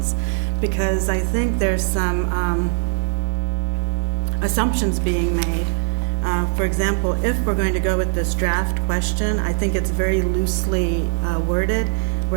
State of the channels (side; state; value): left; silent; 65 dB below the other